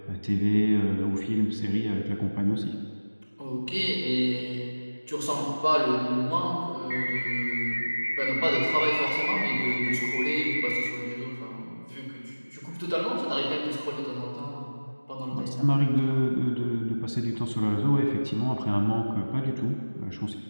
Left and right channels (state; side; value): inverted; both; correlation -1.00